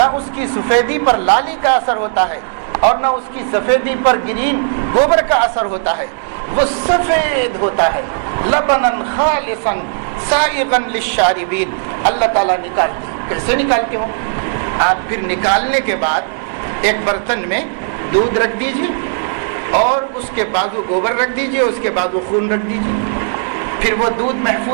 اس کی سفیدی پر لالی کا اثر ہوتا ہے اور نہ اس کی سفیدی پر گرین گوبر کا اثر ہوتا ہے. وہ سفید ہوتا ہے. لبنا خالصا سائغا للشاربین. اللہ تعالیٰ نکالتے ہیں. کیسے نکالتے ہو؟ آپ پھر نکالنے کے بعد ایک برتن میں دودھ رکھ دیجیے اور اس کے بازو گوبر رکھ دیجیے، اس کے بازو خون رکھ دیجیے. پھر وہ دودھ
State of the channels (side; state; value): left; silent; digital silence